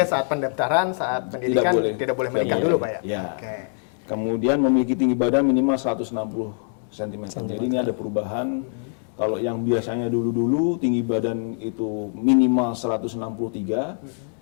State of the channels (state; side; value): silent; right; 55 dB below the other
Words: saat pendaftaran, saat pendidikan tidak boleh menikah dulu Pak ya? Ya. Kemudian memiliki tinggi badan minimal 160 cm. Jadi ini ada perubahan. Kalau yang biasanya dulu-dulu tinggi badan itu minimal 163,